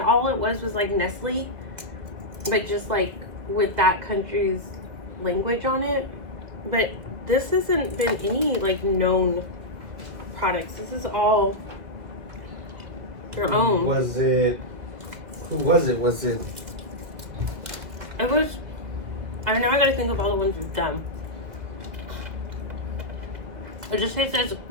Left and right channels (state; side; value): late; left; 1.9 ms